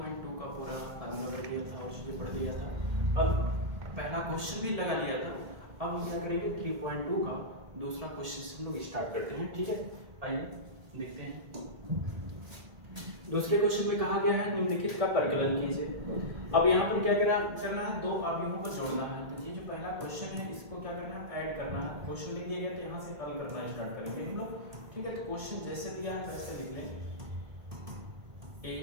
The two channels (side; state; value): left; late; 1.8 ms